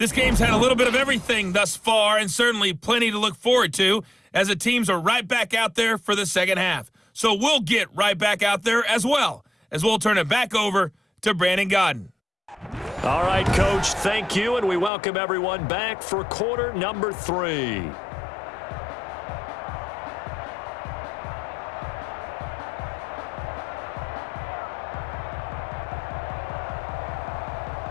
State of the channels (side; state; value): right; drops out; at 14.9 s